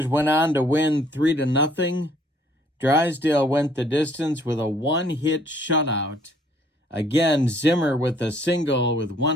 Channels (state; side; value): normal; both; correlation 0.61